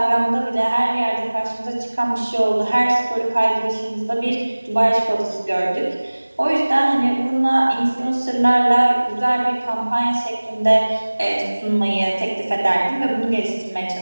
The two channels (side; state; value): both; inverted; correlation -1.00